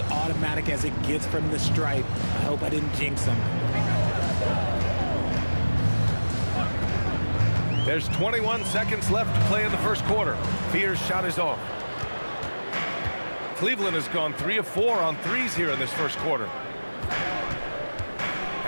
automatic as it gets from the stripe. I hope I didn't jinx him. There's 21 seconds left to play in the first quarter. Fears' shot is off. Cleveland has gone 3 of 4 on threes here in this first quarter.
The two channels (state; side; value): inverted; both; correlation -1.00